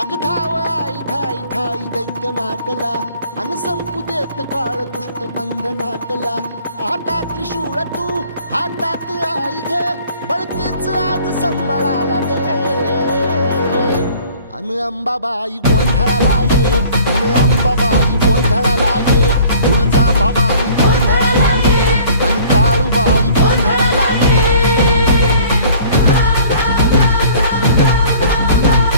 अग धाव आई ठाई ठाई दैत्य मातला अन संपू देत काळ दुष्ट बंधनातला हातात त्रिशूळ तू हातात आई घे बळकेच आज संबळाला दे अन अंबाबाई गोंधळाला ये अन अंबाबाई गोंधळाला ये तुळजा भवानी गोंधळाला ये अन काळूबाई गोंधळाला ये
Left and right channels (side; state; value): both; inverted; correlation -0.51